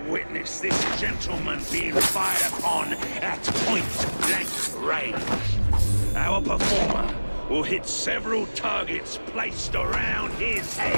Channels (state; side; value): inverted; both; correlation -1.00